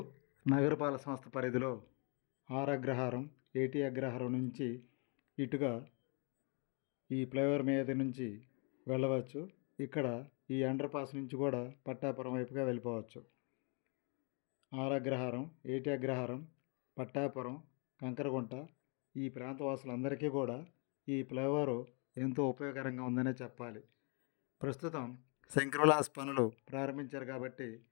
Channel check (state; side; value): quieter; right; 35.9 dB